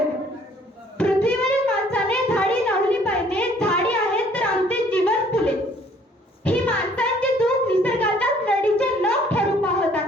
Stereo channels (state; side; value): normal; both; correlation 0.59